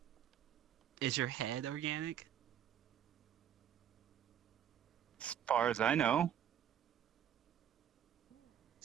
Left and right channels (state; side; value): quieter; left; 9.7 dB